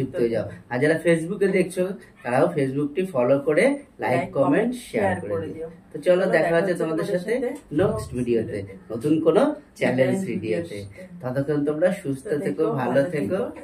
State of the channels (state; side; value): identical; both; correlation 1.00